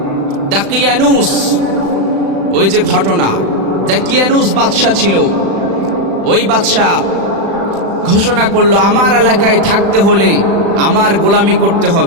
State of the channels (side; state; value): left; late; 36 ms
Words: দাকিয়ানুস, ওই যে ঘটনা, দাকিয়ানুস বাদশা ছিল। ওই বাদশা ঘোষণা করলো, আমার এলাকায় থাকতে হলে আমার গোলামি করতে